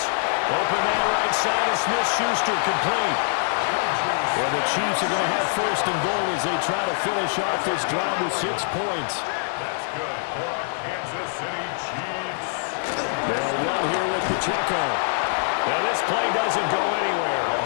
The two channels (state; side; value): silent; right; digital silence